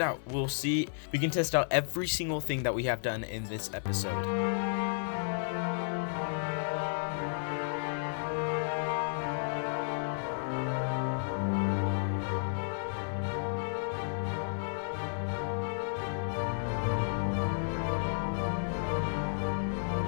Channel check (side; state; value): right; silent; 56 dB below the other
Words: We'll see, we can test out every single thing that we have done in this episode.